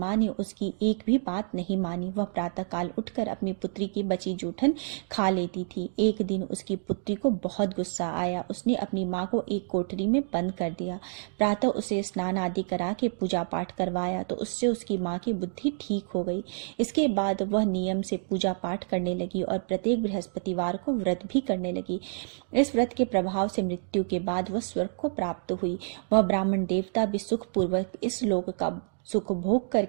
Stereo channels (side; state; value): left; silent; digital silence